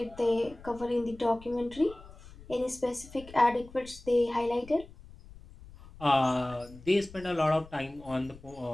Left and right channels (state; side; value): noise; left; rumble, 19 dB below the sound